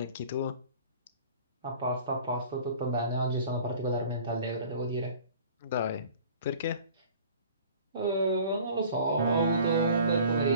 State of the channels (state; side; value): inverted; both; correlation -0.47